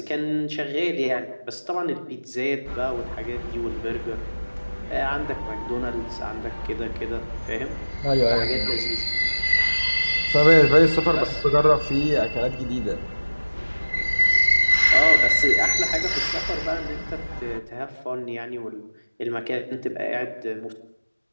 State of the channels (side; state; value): both; inverted; correlation -1.00